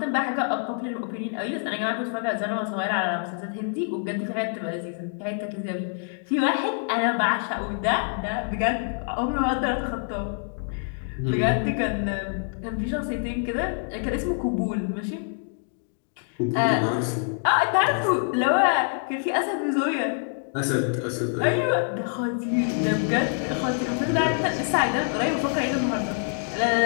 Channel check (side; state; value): right; silent; 61 dB below the other